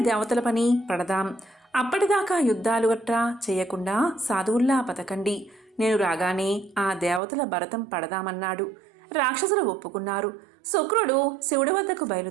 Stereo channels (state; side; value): drops out; left; at 7.2 s